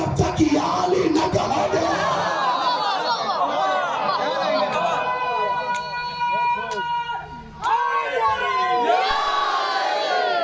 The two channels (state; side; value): identical; both; correlation 1.00